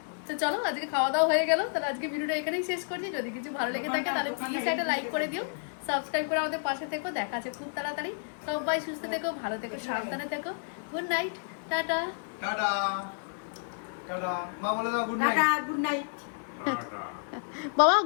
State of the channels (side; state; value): right; silent; digital silence